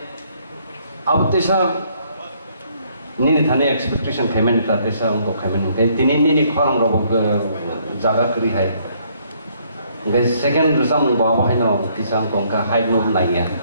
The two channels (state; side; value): inverted; both; correlation -0.67